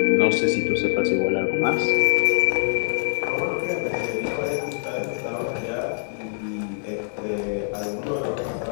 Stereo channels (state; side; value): silent; right; 63 dB below the other